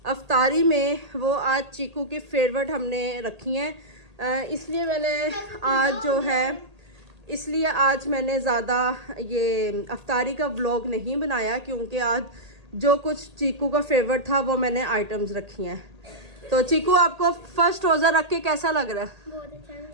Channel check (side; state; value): left; late; 1.8 ms